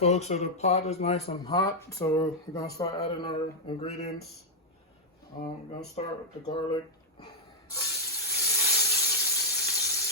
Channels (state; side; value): normal; both; correlation -0.02